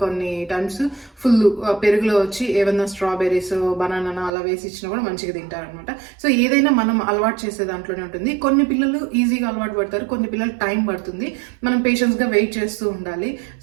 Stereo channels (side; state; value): left; drops out; at 4.3 s